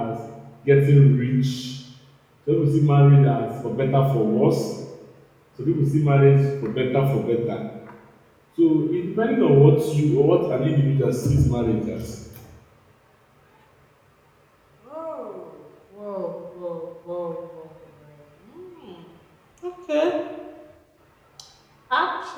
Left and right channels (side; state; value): both; identical; correlation 1.00